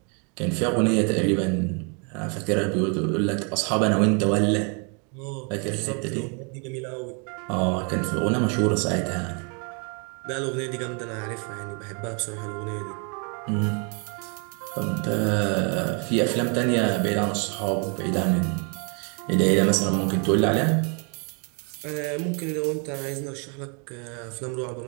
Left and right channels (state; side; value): quieter; left; 36.8 dB